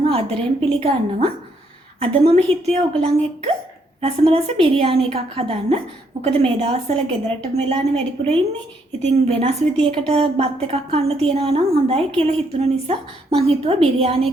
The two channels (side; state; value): both; normal; correlation 0.72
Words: ආදරෙන් පිළිගන්නවා. අද මම හිතුවේ ඔයගලන් එක්ක රසම රස බිරියානි එකක් හදන්න. මොකද මේ දවස්වල ගෙදරටම වෙලානේ වැඩිපුර ඉන්නේ. ඉතින් වෙනස් විදියකට බත් එකක් කන්න තියනවා නම් හොඳයි කියලා හිතුන නිසා මං හිතුවා බිරියානි